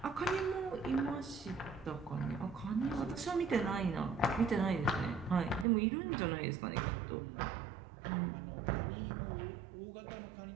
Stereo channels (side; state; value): left; drops out; at 5.7 s